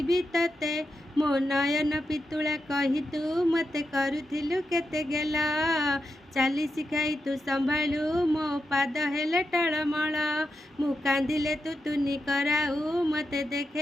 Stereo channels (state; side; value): normal; both; correlation 0.87